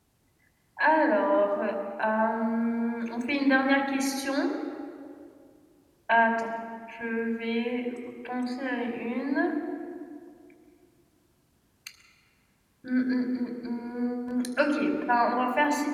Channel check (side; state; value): both; identical; correlation 1.00